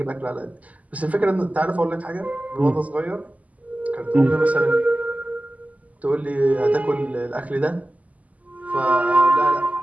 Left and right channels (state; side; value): late; left; 0.074 ms